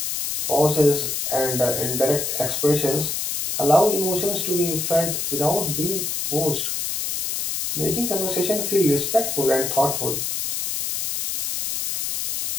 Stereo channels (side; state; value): left; noise; hiss, 2 dB below the sound